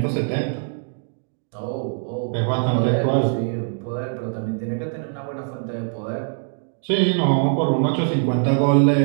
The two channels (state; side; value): silent; left; 64 dB below the other